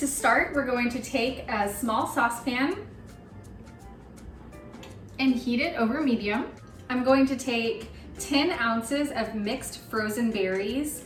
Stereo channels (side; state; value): both; identical; correlation 1.00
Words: start we're going to take a small saucepan and heat it over medium. I'm going to take 10 ounces of mixed frozen berries.